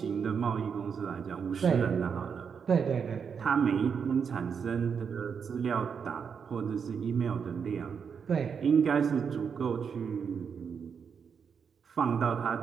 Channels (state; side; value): quieter; left; 6.6 dB